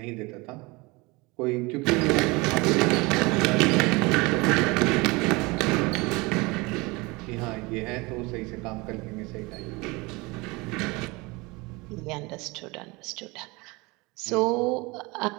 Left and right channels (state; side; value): quieter; left; 24.8 dB